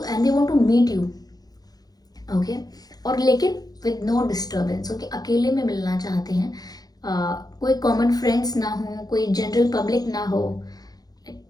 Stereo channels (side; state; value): right; late; 0.19 ms